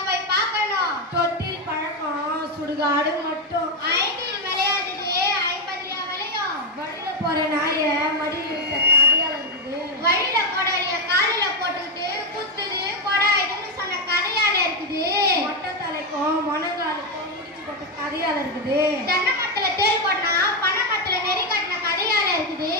போய் பார்க்கணும். தொட்டில் பழக்கம் சுடுகாடு மட்டும். 5 விளையாடுது 50 விளையும். வழியில போற நாய மடியில் இருக்க கதையால இருக்குது. வழியில போடறிய காலில போட்டுக்கிட்டு குத்துது கொடாயுதுன்னு சொன்ன கதையால இருக்குது. மொட்டை தலைக்கும் மொனங்காலுக்கும் முடிச்சு போட்ட கதையால இருக்குது. தென்னை மரத்துல தேல் போட்டா பனை மரத்துல நெறி கட்டின கதையால இருக்குது.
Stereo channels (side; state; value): both; normal; correlation 0.05